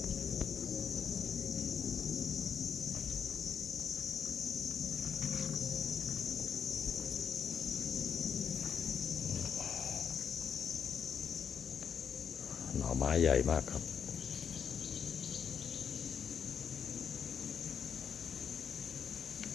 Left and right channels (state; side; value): quieter; right; 7.4 dB